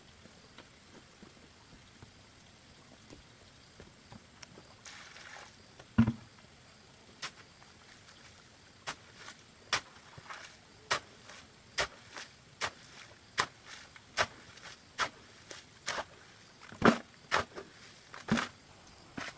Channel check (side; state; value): both; identical; correlation 1.00